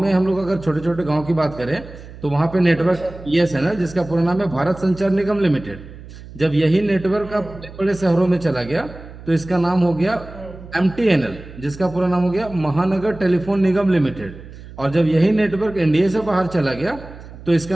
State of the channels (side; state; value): right; noise; hum, 16 dB below the sound